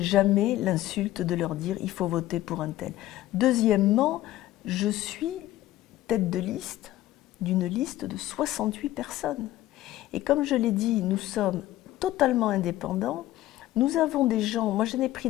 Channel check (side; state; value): right; quieter; 15.1 dB